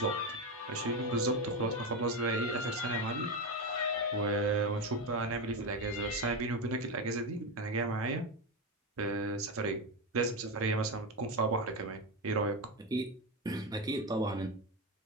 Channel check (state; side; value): normal; both; correlation 0.13